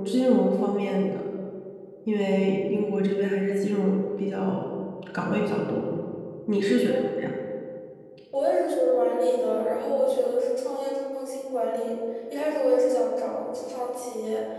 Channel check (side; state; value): both; identical; correlation 1.00